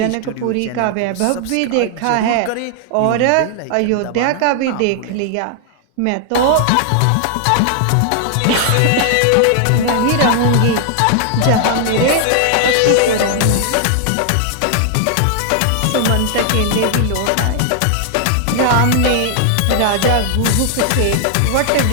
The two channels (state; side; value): different; both; correlation 0.00